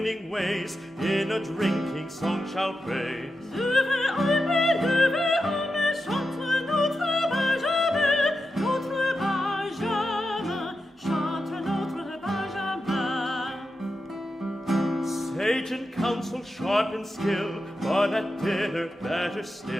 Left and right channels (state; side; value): normal; both; correlation 0.89